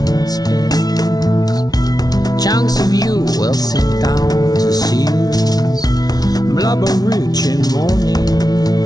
spins. Chunks of you will sink down to seals. Blubber rich in morning.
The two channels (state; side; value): late; right; 0.19 ms